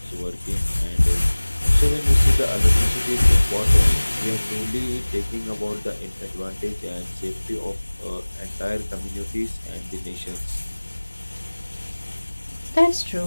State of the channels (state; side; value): inverted; both; correlation -1.00